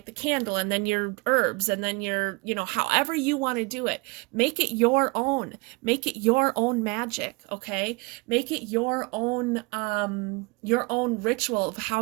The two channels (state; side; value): quieter; left; 27.1 dB